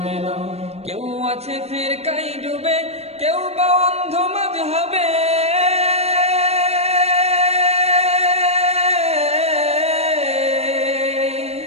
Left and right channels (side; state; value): left; late; 0.30 ms